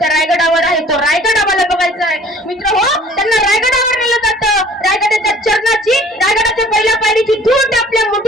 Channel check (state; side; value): normal; both; correlation 0.51